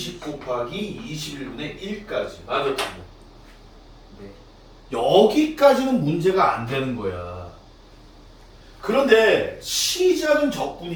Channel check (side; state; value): both; identical; correlation 1.00